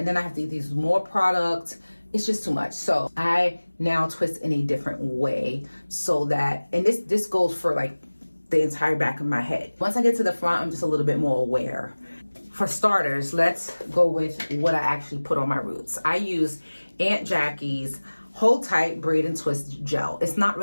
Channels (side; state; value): both; inverted; correlation -1.00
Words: then I have to use more product. It's just too much. So I now twist in a different way so that, and this goes for like the entire back of my head. Once I get to the front, I'm just a little bit more aware. For starters, let's go with what I actually put on my roots. I use Aunt Jackie's Hold Tight Braid and Twist Gel. It's not